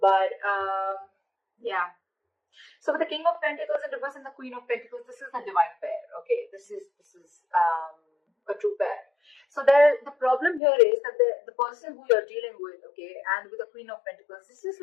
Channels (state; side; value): drops out; right; at 10.6 s